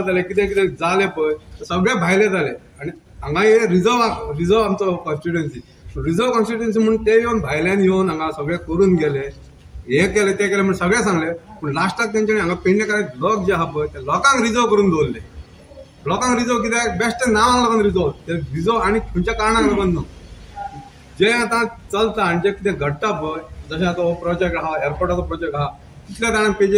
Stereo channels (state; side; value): identical; both; correlation 1.00